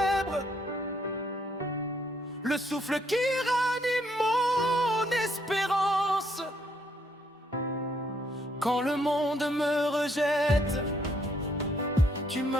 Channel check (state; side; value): normal; both; correlation 0.71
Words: le souffle qui ranime mon espérance. Quand le monde me rejette, tu